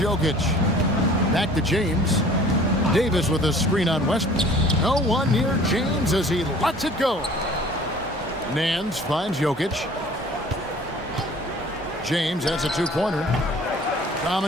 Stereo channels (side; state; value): both; normal; correlation 0.49